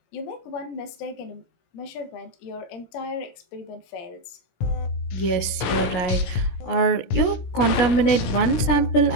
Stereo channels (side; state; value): right; late; 16 ms